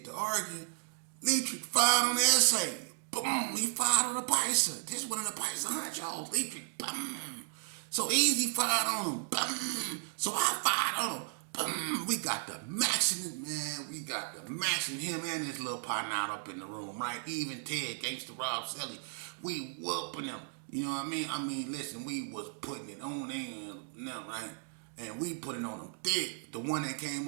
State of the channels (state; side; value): silent; left; 55 dB below the other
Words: to arguing. Leatrick fired on the essay. Boom, he fired on the Pisces. This one of the Pisces honchos. Leatrick, boom. So Easy fired on him. Boom. So I fired on him. Boom. We got the maxing, man. We got the maxing him and his little partner out up in the room, right? Even Ted, Gangsta Rob Selly. We whooping them. You know what I mean? I mean, listen, we was putting it on them, right? And we put it on them thick. The one that